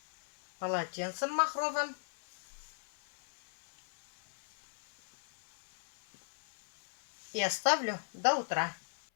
полотенцем махровым. И оставлю до утра.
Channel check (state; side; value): silent; right; 52 dB below the other